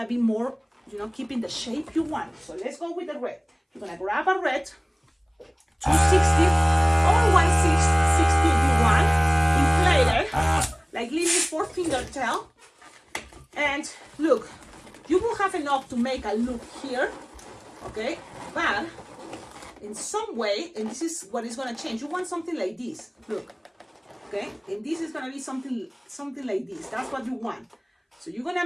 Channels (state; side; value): identical; both; correlation 1.00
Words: be more, keeping the shape you want. So let's go with the red. You're gonna grab a red, 260 or 160 if you want, inflate it, like leaving 4-finger tail. And look, you will have enough to make a loop here, okay? But in some way, and this is what is gonna change, you want something like this, look. Okay, and this is gonna be something like this. That's what you want. So you're gonna